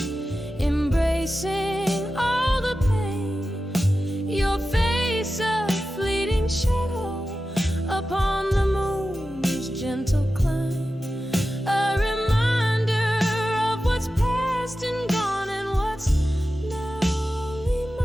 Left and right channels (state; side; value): normal; both; correlation 0.93